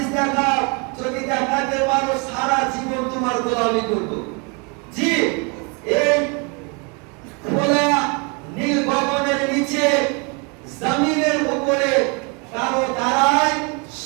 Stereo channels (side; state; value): left; quieter; 32.5 dB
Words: দেখাও। যদি দেখাতে পারো সারা জীবন তোমার গোলামি করব। জি